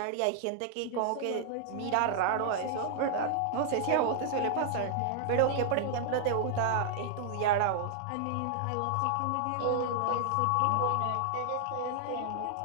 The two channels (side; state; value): both; different; correlation -0.01